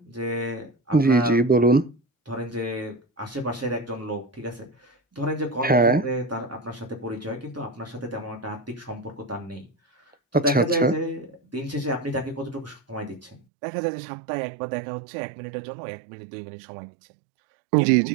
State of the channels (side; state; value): left; drops out; at 13.4 s